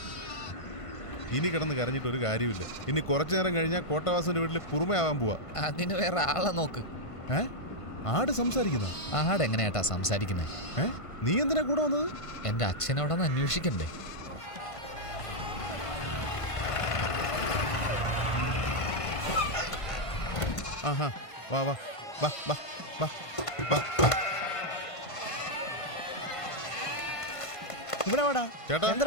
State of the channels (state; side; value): late; right; 1.5 ms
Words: ഇനി കിടന്ന് കരഞ്ഞിട്ട് ഒരു കാര്യമില്ല. ഇനി കുറച്ചു നേരം കഴിഞ്ഞാൽ കോട്ടവാസന്റെ വീട്ടിൽ കുറുമയാവാൻ പോവാ. അതിന് വേറെ ആളെ നോക്ക്. ആട് സംസാരിക്കുന്ന? ആട് എങ്ങനെയാട്ടാ സംസാരിക്കുന്നേ? നീ എന്തിനാ കൂടെ വന്നത്? എന്റെ അച്ഛനോടൊന്ന് അന്വേഷിക്കണ്ടേ? ആഹാ, വാ വാ വാ വാ വാ വാ. ഇവിടെ വാടാ ചേട്ടാ.